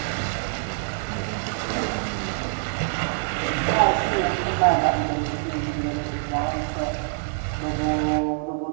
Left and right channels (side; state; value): left; silent; digital silence